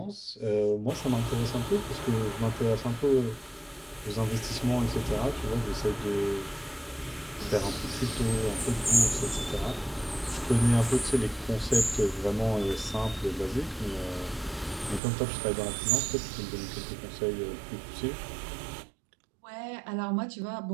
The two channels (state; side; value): drops out; left; at 15.0 s